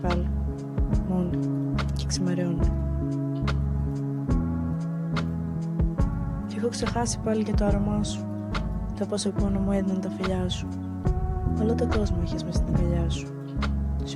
Μόνοι. Και ξημερώνει. Κι έχω ξεχάσει πάλι και το άρωμά σου. Το πόσο πόνο μου έδιναν τα φιλιά σου. Όλο τον κόσμο είχες μες στην αγκαλιά σου.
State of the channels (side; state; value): both; identical; correlation 1.00